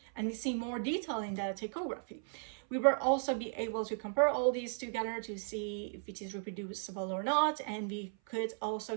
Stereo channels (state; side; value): silent; left; 54 dB below the other